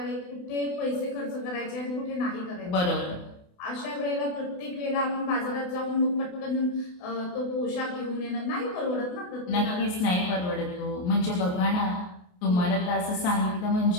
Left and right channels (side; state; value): right; late; 28 ms